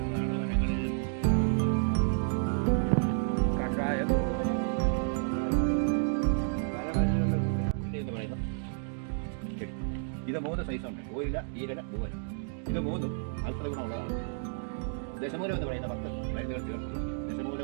വനങ്ങളിൽ കഷായം പല മരുന്നുകളുടെ കൂടെ എന്ന് പറയുന്ന ചെടി. ഇത് 3 സൈസുണ്ട്: ഓയില, ഈരല, പൂവല. ഇത് 3ഉം ഔഷധ ഗുണമുള്ളതാണ്. ദശമൂലം എന്ന് പറയുന്ന 10 മരുന്നുകൾ ചേർത്ത് ദശമൂലം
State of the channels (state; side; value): silent; left; digital silence